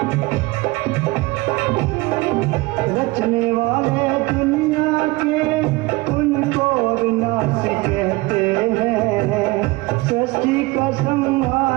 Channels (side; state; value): left; quieter; 22.3 dB